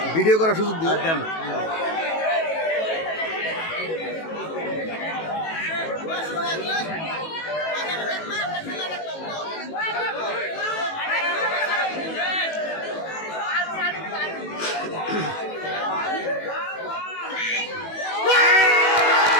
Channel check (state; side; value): late; right; 18 ms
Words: ভিডিও করার সুযোগ দিও।